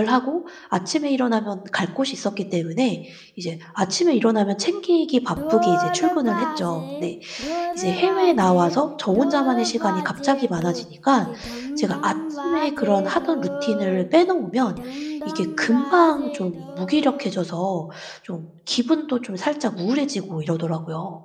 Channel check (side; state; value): both; identical; correlation 1.00